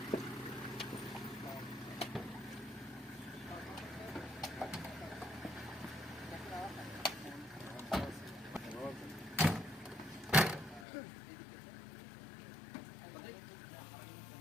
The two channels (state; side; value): drops out; right; at 10.9 s